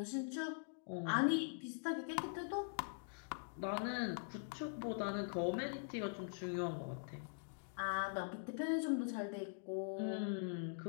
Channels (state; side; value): silent; right; digital silence